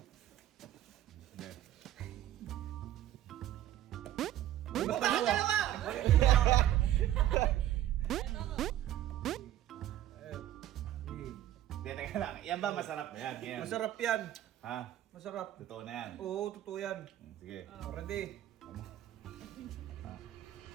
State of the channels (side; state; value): left; quieter; 12.6 dB